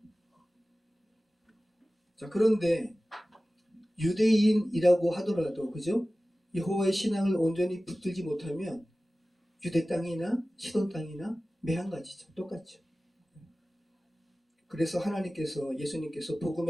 자, 그런데 유대인이라고 하더라도, 그죠? 여호와의 신앙을 온전히 붙들지 못하면 유대 땅이나 시돈 땅이나 매한가지죠. 똑같죠. 그래서 하나님께서, 예수님께서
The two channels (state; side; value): normal; both; correlation 0.97